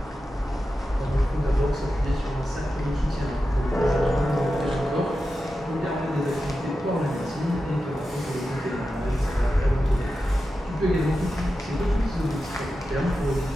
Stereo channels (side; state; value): both; normal; correlation 0.91